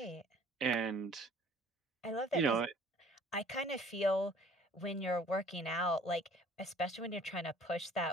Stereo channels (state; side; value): normal; both; correlation 0.53